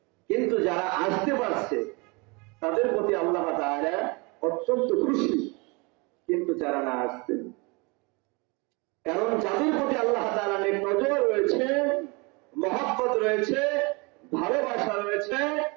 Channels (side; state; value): left; quieter; 28.5 dB